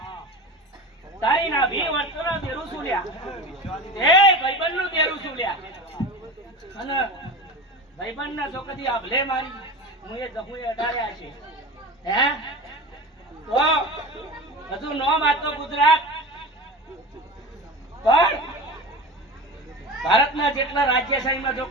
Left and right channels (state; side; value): normal; both; correlation 0.30